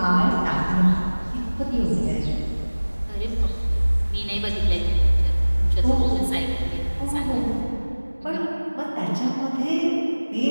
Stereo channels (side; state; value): both; inverted; correlation -1.00